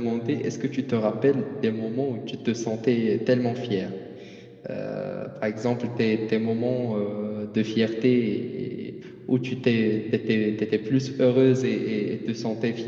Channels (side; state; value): both; identical; correlation 1.00